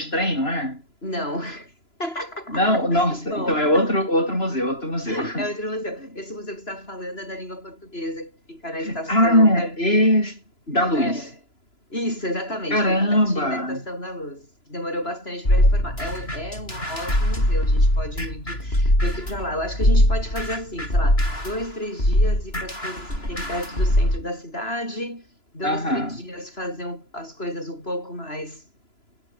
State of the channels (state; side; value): late; right; 3.0 ms